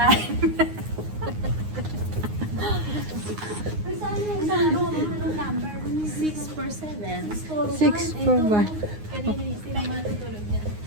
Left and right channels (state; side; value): late; left; 9.6 ms